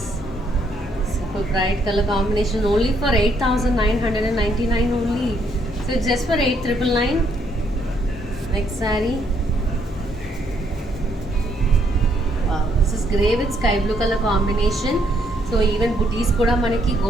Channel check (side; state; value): both; normal; correlation 0.71